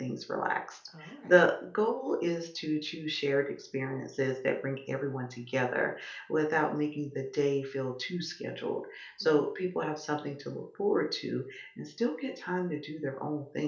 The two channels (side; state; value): both; identical; correlation 1.00